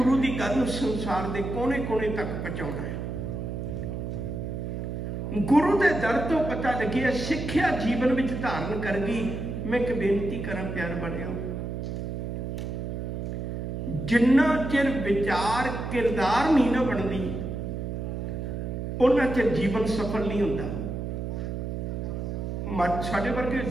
की गल नूं संसार के कोने कोने तक पहुंचाउणा है। गुरु के दर तो पता लगे सिक्ख्या जीवन में धारण कर गई। मैं एक बेनती करा प्यार बनियो, जिन्ना चिर विचार किरदार नहीं ना बनती उन्ना चिर जीवन सफल नहीं होता। साडे वर्गे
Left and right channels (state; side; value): noise; right; hum, 4 dB below the sound